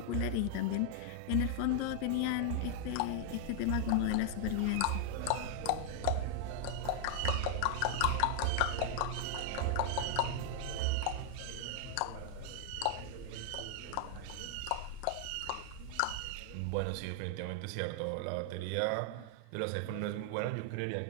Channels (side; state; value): both; different; correlation 0.00